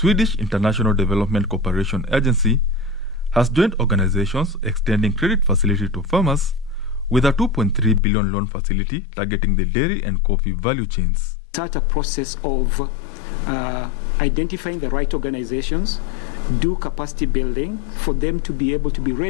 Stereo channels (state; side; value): drops out; right; at 8.0 s